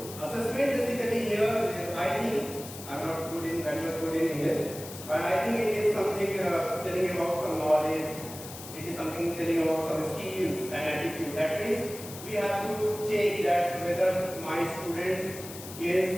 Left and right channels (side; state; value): left; noise; hiss, 13 dB below the sound